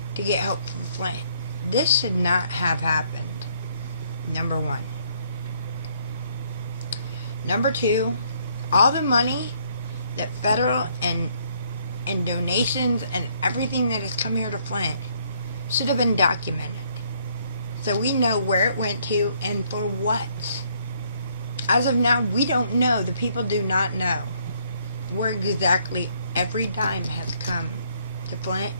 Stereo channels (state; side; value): inverted; both; correlation -0.67